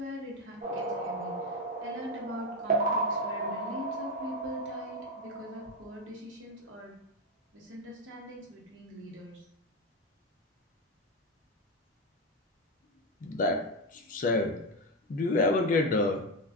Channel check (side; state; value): both; normal; correlation 0.11